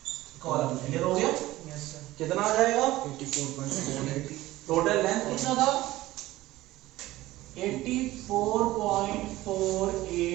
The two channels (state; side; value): quieter; left; 17.0 dB